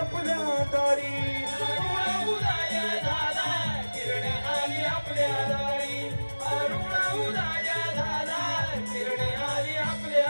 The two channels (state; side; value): inverted; both; correlation -1.00